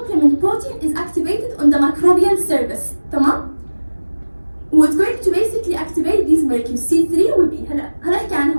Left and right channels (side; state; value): both; inverted; correlation -1.00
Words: protein is activated on the microbial surface. تمام?